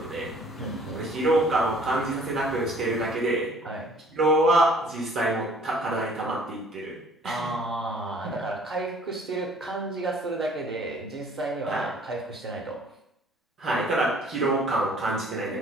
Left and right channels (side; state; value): both; normal; correlation 0.55